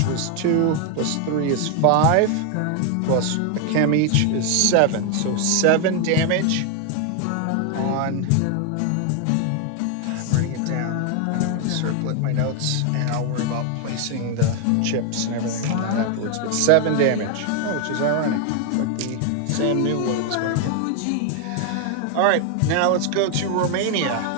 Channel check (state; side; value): different; both; correlation 0.00